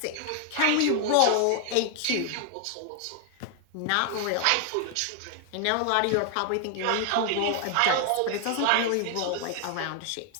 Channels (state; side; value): different; both; correlation 0.00